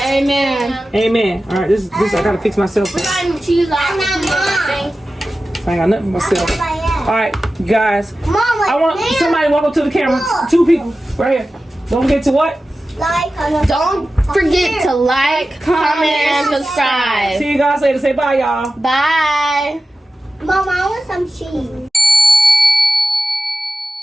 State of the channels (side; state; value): both; normal; correlation 0.94